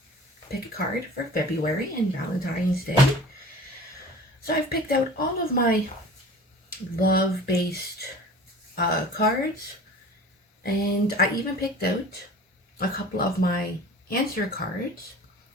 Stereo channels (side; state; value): both; normal; correlation 0.41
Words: pick a card for February and Valentine's Day. So I've picked out all of my love based cards, and I even picked out a couple of my answer cards